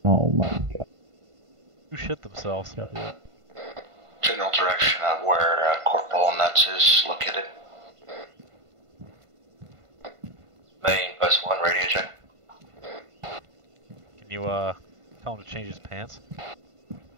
Oh my god. Who shit themselves? General direction of where Corporal Nuts is located. Main, Post 1, radio check. Can you tell him to change his pants?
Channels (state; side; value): late; left; 1.5 ms